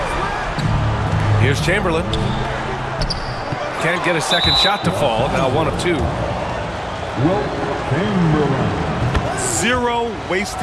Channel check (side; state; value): both; identical; correlation 1.00